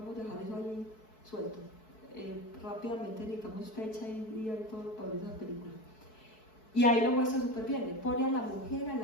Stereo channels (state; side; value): late; right; 4.6 ms